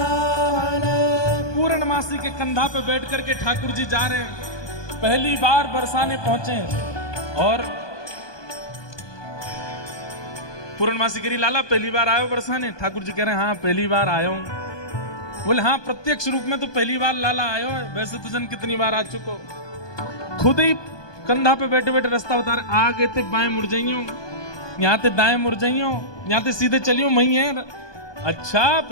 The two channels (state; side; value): late; right; 1.2 ms